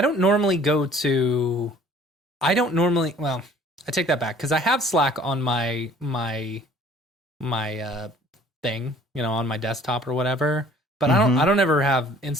normally go to I don't normally. Well, I take that back because I have Slack on my thing, on my desktop or whatever. But I don't ever have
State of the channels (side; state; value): both; normal; correlation 0.53